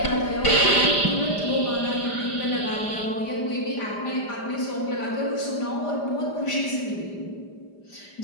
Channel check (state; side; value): late; right; 5.0 ms